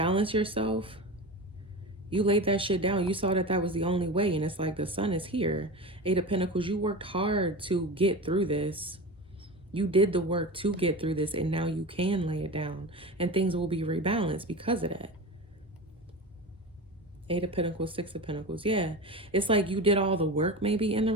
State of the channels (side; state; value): both; normal; correlation 0.27